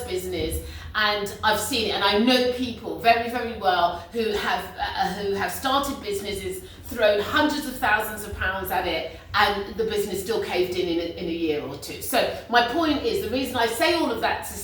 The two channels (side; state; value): both; identical; correlation 1.00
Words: business, and I've seen it. And I know people very, very well who have started businesses, thrown hundreds of thousands of pounds at it, and the business still caved in a year or two. So my point is, the reason I say all of that to